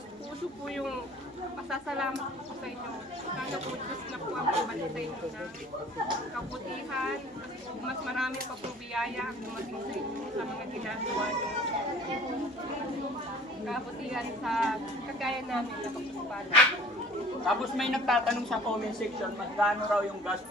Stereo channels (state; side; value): normal; both; correlation 0.48